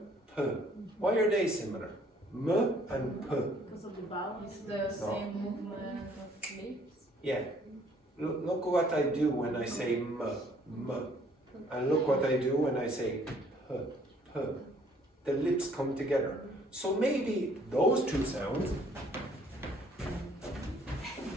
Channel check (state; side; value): normal; both; correlation 0.61